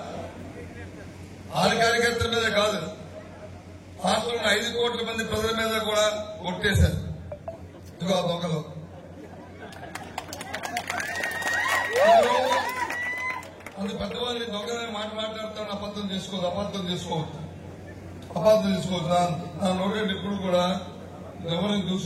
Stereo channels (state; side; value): identical; both; correlation 1.00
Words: 6 కార్యకర్తల మీద కాదు, రాష్ట్రంలో 5 కోట్ల మంది ప్రజల మీద కూడా కొట్టేశారు. ఇదిగో ఆ దొంగలు అందు పెద్దవాళ్ళని దొంగలని మాట్లాడుతాను. అబద్ధం చేసుకోవద్దు. నా నోటి ఎప్పుడు కూడా ఎవరిని